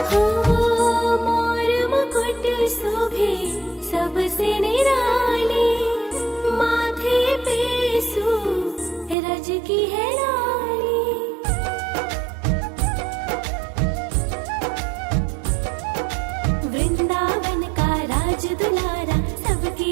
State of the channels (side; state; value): left; drops out; at 9.2 s